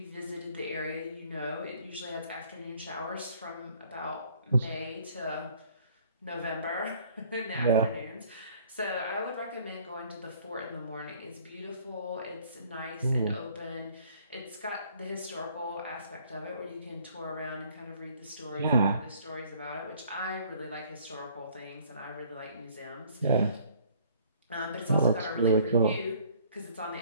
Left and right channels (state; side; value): inverted; both; correlation -0.57